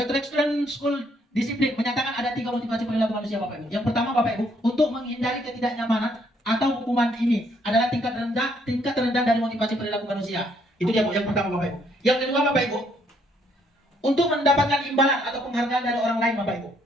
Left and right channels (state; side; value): normal; both; correlation 0.69